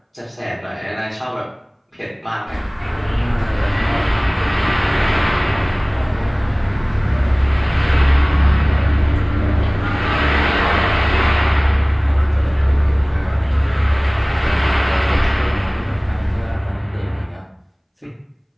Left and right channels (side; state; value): both; identical; correlation 1.00